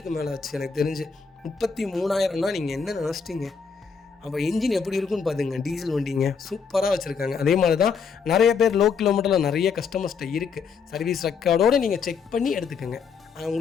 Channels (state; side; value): quieter; right; 5.8 dB